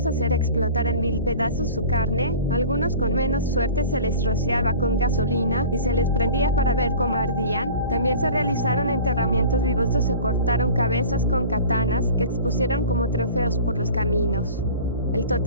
hacer explotar en 1000 pedazos su carne. Algunos con menos suerte se les rociaba con gasolina y se les prendía para ver cómo ardían. También se realizaron enterramientos vivos o se cortaron cabezas con katanas que expusieron como trofeos por los caminos. El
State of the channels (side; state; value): both; inverted; correlation -0.41